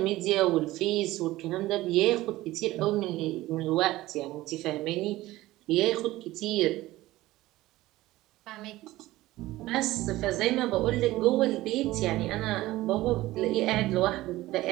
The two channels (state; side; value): quieter; left; 17.2 dB